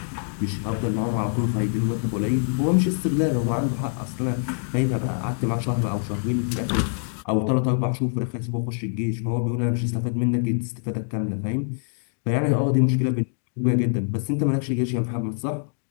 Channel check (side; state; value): right; silent; 62 dB below the other